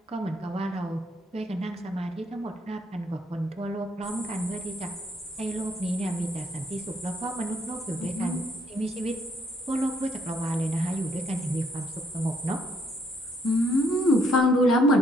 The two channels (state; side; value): normal; both; correlation 0.69